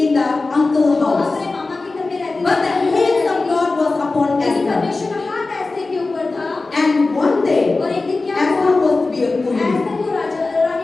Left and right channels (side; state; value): right; quieter; 3.5 dB